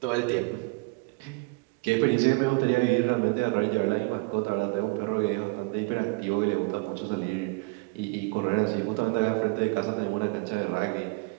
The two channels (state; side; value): quieter; left; 28.2 dB